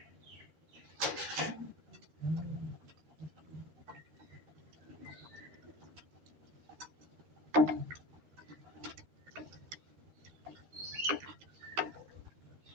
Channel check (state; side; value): late; left; 13 ms